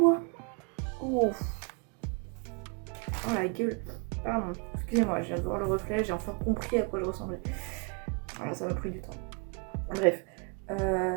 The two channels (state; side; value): quieter; left; 35.0 dB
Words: Oh, la gueule. Pardon. Excusez-moi, je viens de voir le reflet. J'ai enfin compris à quoi je ressemblais. Voilà, ça m'a pris du temps. Bref.